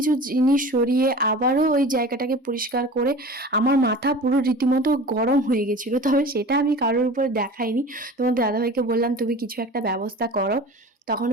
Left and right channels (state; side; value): normal; both; correlation 0.38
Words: জিনিস সরিয়ে আবারও ওই জায়গাটাকে পরিষ্কার করে আমার মাথা পুরো রীতিমতো গরম হয়ে গেছিলো। তবে সেটা আমি কারোর উপর দেখাইনি, তোমার দাদাভাইকে বললাম তুমি কিছু একটা ব্যবস্থা করো। তখন